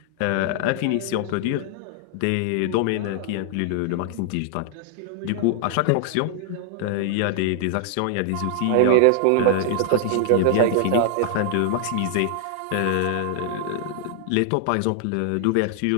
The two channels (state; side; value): different; both; correlation 0.00